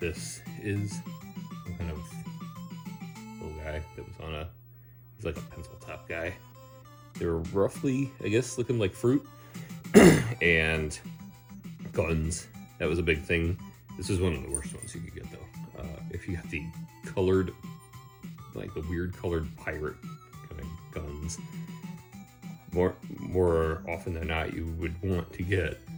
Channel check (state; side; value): identical; both; correlation 1.00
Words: is, some kind of little guy that was on he's like a pencil top guy. They were roughly, I guess, looking like fruit. And guns. That was a big thing. This is one of the worst ones you could get though. If you got the colored, like the weird colored pirate kind of guns, more often than not, you would want to get